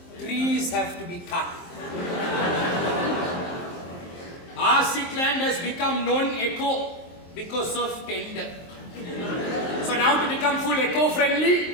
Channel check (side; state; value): right; late; 23 ms